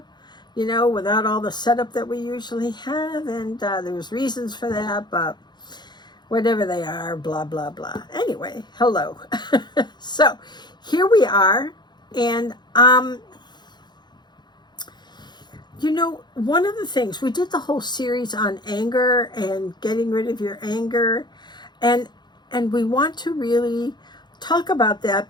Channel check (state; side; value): late; right; 0.21 ms